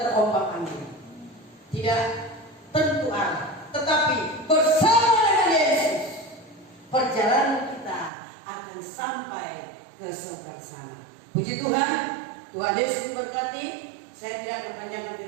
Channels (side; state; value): left; drops out; at 8.1 s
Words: tidak tentu arah. Tetapi bersama dengan Yesus, perjalanan kita akan sampai ke surga sana. Puji Tuhan, Tuhan Yesus memberkati. Saya tidak akan panjangkan